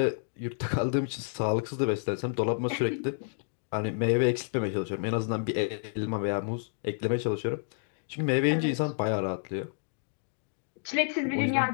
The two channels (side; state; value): right; silent; digital silence